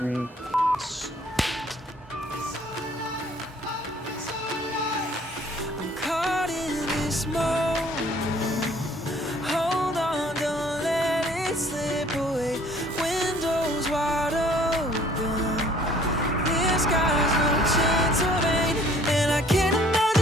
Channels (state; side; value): normal; both; correlation 0.56